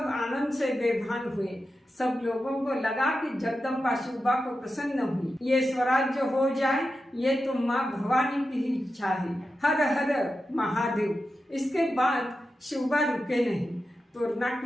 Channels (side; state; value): both; normal; correlation 0.91